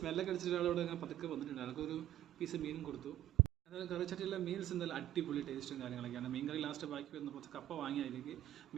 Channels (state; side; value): quieter; left; 12.9 dB